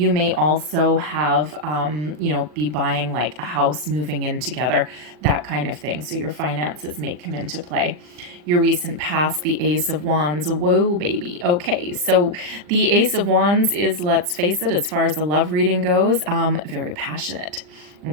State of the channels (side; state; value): left; late; 40 ms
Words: may also have, be buying like a house, moving in together, that kind of thing. So your finances may come into play. Your recent past, the Ace of Wands. Whoa, baby. Okay, so the Ace of Wands is, let's face it, as far as the love reading goes, very passionate.